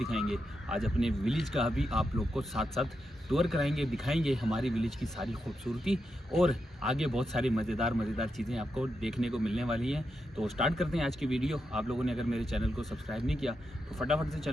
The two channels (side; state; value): both; normal; correlation 0.86